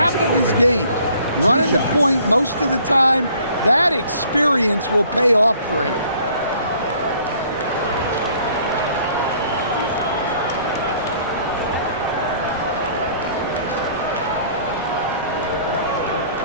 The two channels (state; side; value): inverted; both; correlation -0.57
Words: of his games, running the point most of the time. That experience will pay off for him.